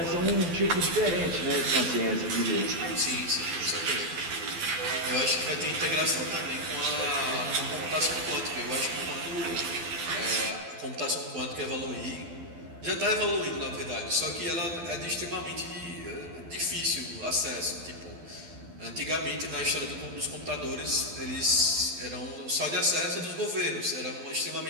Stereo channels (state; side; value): late; left; 12 ms